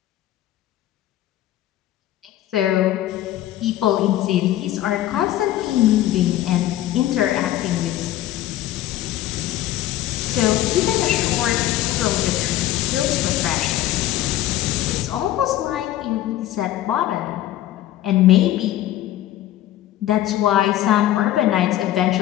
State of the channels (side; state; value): right; quieter; 13.7 dB